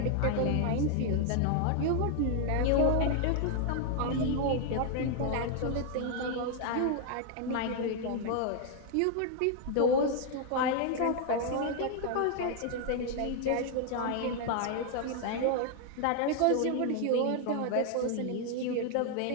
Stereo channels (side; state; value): both; different; correlation 0.00